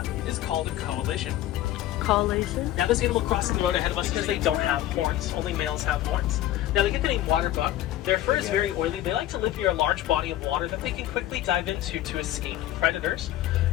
is called a coalition. Collation. Now this animal crossing the road ahead of us because they don't have horns. Only males have horns. Now they get the name water buck. Their fur is very oily. They like to live near a large body of water that they can quickly dive into to escape predators.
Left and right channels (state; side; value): quieter; right; 13.7 dB